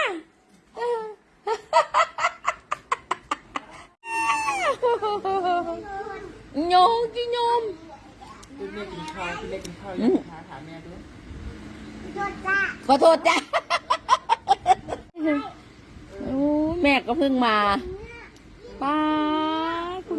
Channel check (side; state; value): both; identical; correlation 1.00